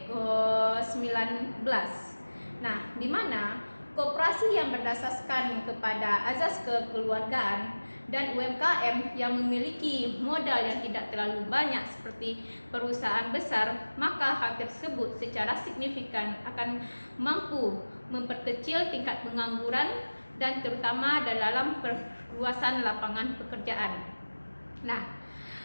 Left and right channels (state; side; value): inverted; both; correlation -1.00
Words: Nah, di mana koperasi yang berdasarkan kepada azas kekeluargaan dan UMKM yang memiliki modal yang tidak terlalu banyak seperti perusahaan besar, maka hal tersebut secara signifikan akan mampu memperkecil tingkat pengangguran dan terutama dalam perluasan lapangan pekerjaan. Nah,